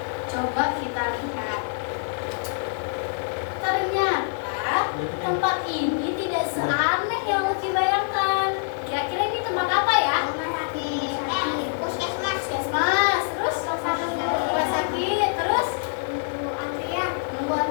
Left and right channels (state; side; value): silent; right; digital silence